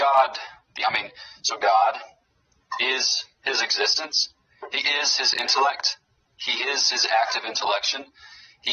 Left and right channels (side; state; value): both; identical; correlation 1.00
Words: is his existence. He is his intellect. He is his active intellection.